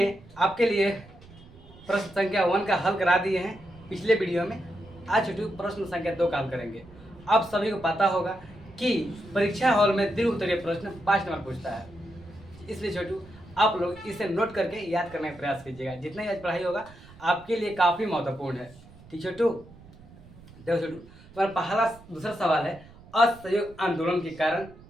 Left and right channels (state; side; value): noise; right; rumble, 22 dB below the sound